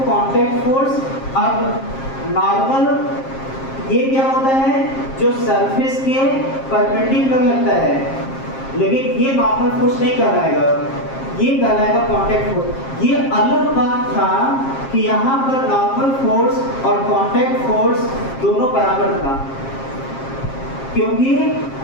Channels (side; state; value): right; late; 7.5 ms